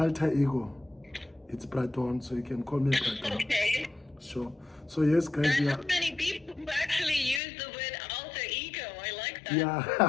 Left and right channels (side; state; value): right; drops out; at 7.4 s